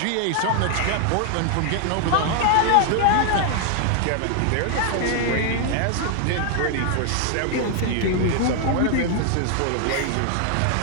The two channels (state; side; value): different; both; correlation 0.00